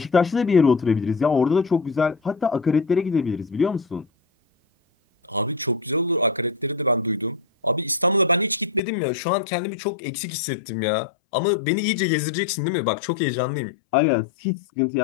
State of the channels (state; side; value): drops out; right; at 8.8 s